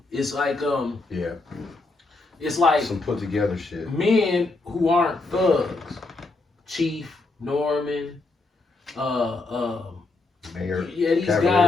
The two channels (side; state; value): right; quieter; 3.3 dB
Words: It's like Yeah. it's like Some put together shit. men who aren't thugs, Chief, Norman, Mayor. yeah, these Cavalier.